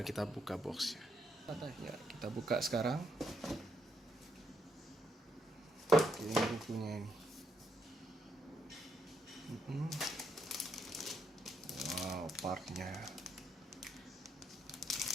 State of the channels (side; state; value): both; normal; correlation 0.77